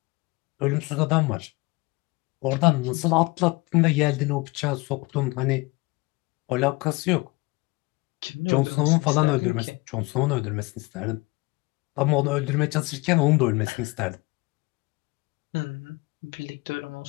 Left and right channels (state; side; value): quieter; right; 24.5 dB